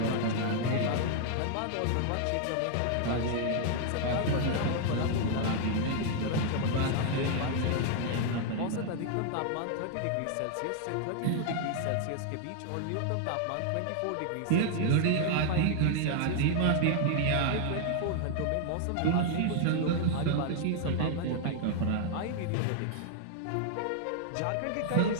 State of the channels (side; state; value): both; different; correlation 0.00